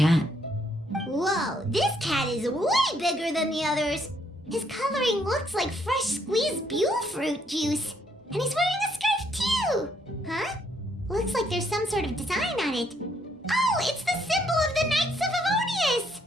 Whoa, this cat is way bigger than the others. His coloring looks like fresh squeezed Buell fruit juice. And he's wearing a scarf too! Huh? Looks like there's some sort of design on it. Oh, it's the symbol of the Knights of Favonius!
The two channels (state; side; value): normal; both; correlation 0.70